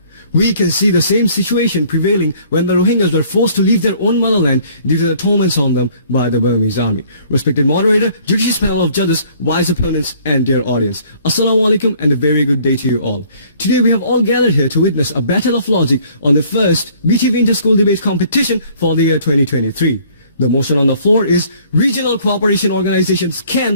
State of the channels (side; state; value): both; inverted; correlation -0.58